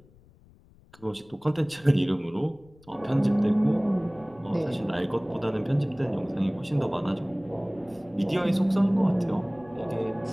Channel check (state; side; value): noise; left; rumble, 27 dB below the sound